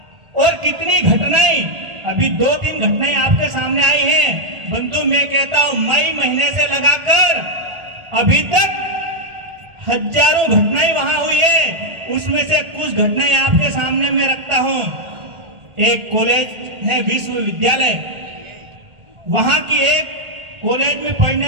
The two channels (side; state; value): left; late; 1.4 ms